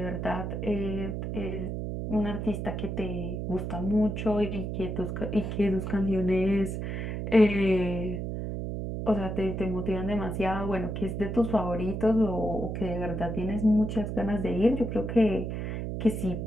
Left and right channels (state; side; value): noise; right; hum, 4 dB below the sound